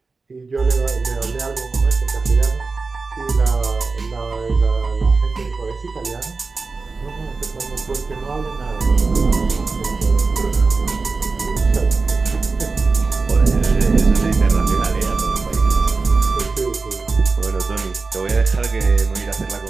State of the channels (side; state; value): left; quieter; 4.1 dB